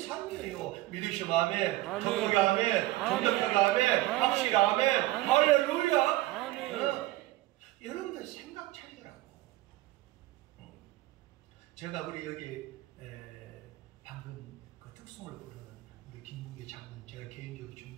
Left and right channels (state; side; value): quieter; left; 17.3 dB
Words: 믿으시면 아멘, 아멘. 정복이 아멘, 정덕하게 아멘, 아멘. 확실히 아멘, 아멘. 할렐루야. 아멘. 여러분들 생각 차리더라고. 제가 우리 여기 방금 그 특송을 부르는 우리 김문기 장군 제가 개인적으로